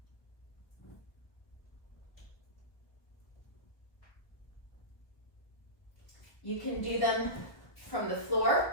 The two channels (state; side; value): late; right; 1.2 ms